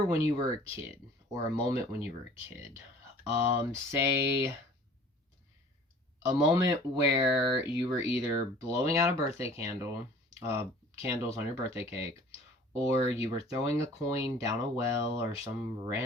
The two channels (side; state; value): both; normal; correlation 0.49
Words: when you were a kid, or a moment when you were a kid. Say a moment where you were either blowing out a birthday candles on your birthday cake, or you were throwing a coin down a well or some